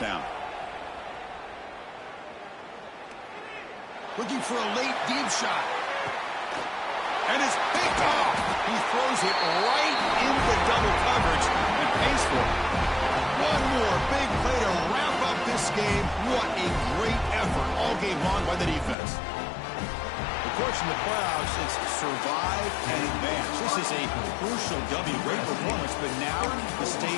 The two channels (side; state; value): right; drops out; at 18.9 s